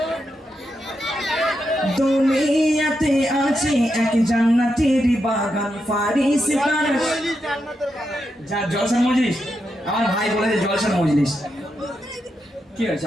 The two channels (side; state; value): both; normal; correlation 0.85